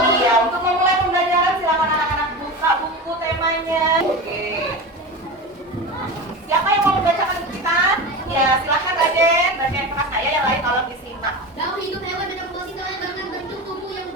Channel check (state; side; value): normal; both; correlation 0.26